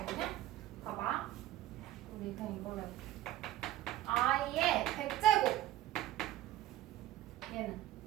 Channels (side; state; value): left; quieter; 14.1 dB